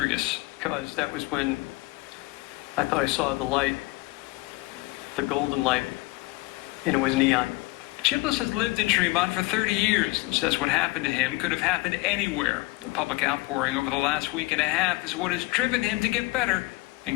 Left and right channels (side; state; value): right; quieter; 22.8 dB